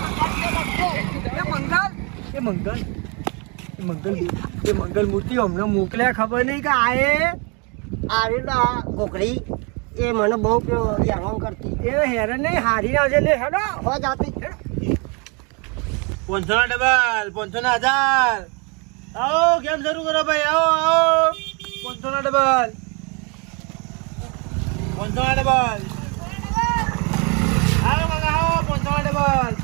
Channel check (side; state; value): left; quieter; 31.7 dB